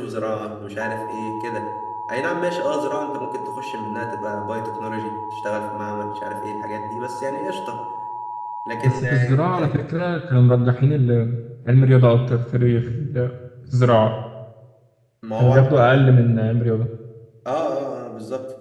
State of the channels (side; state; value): both; identical; correlation 1.00